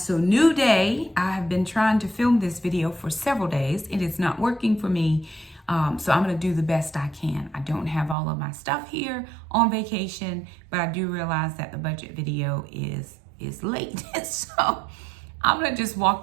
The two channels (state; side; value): drops out; left; at 8.2 s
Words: so new day. I have been trying to film this video for several days. It is not working for me. So I'm going to do the best I can. I don't have all of my stuff here on vacation, but I do realize that the budget video is late. So I'm going to just